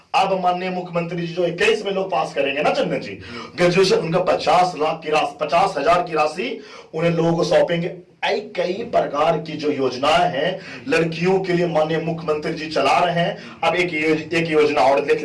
अब माननीय मुख्यमंत्री जी जो 21 में लोग पास करेंगे ना चंदन जी, ग्रेजुएशन उनका 50,000 की राशि उन्हें लोगों को सौंपेंगे। कई प्रकार की जो योजनाएं हैं लड़कियों के लिए माननीय मुख्यमंत्री जी चला रहे हैं। अब एक योजना और देख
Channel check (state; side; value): identical; both; correlation 1.00